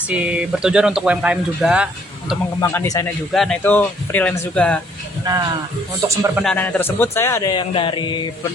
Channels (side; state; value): both; normal; correlation 0.64